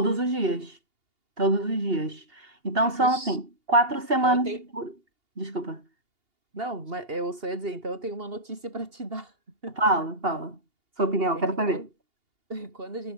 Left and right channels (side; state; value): left; late; 2.8 ms